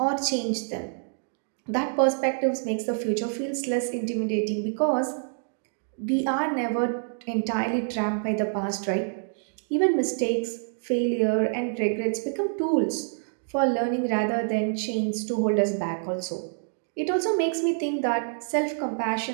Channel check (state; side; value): silent; left; digital silence